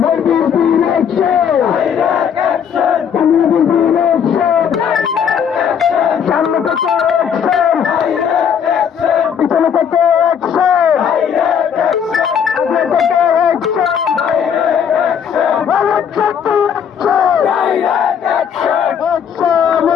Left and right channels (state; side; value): quieter; right; 7.8 dB